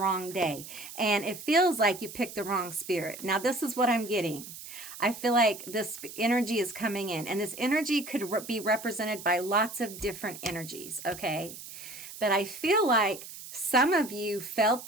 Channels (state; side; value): noise; right; hiss, 13 dB below the sound